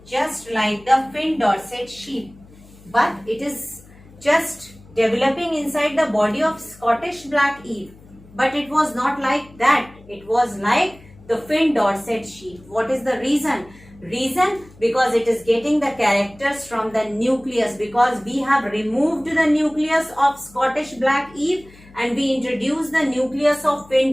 fin Dorset sheep, but it is just developing inside the body of Scottish black eve. But it was not like that. It was like the fin Dorset sheep. What is the reason? Reason, because it is getting the characters from the nucleus, because we have removed the nucleus of Scottish black eve and we introduced the nucleus of fin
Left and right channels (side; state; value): left; noise; hum, 24 dB below the sound